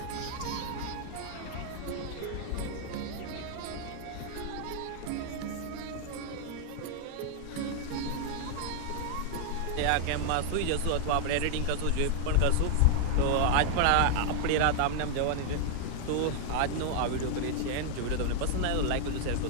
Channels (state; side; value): different; both; correlation 0.00